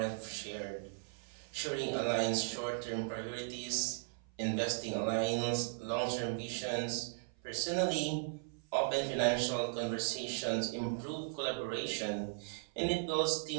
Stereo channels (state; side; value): silent; left; 53 dB below the other